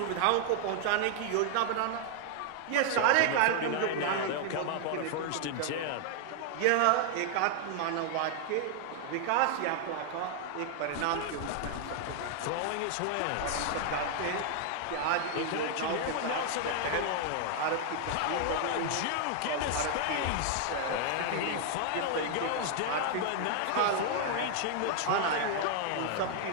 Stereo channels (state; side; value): different; both; correlation 0.00